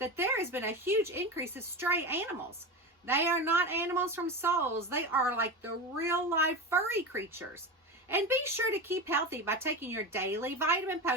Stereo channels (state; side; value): normal; both; correlation 0.23